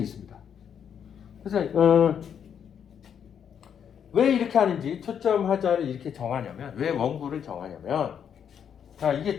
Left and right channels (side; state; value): right; quieter; 8.1 dB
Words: 있습니다. 그래서 왜 이렇게 하는지 초점 하자를 이렇게 정하냐면 왜 원구를 정하냐면 자